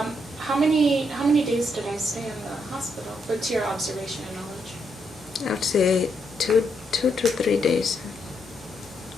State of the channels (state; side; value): normal; both; correlation 0.78